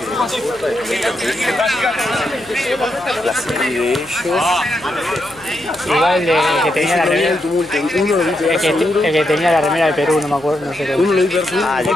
la serie de ellos. Igual el que tenía la remera. El tumulto, uno lo vi pegar El seguro. que tenía la remera de Perú, no me acuerdo, no sé qué. Uno lo vi pegar seguro. Ah, el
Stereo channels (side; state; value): left; noise; hum, 25 dB below the sound